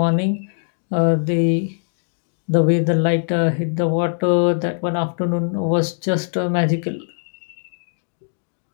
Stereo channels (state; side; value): silent; right; digital silence